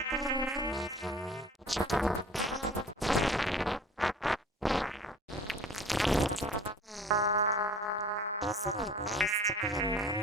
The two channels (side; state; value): both; normal; correlation 0.44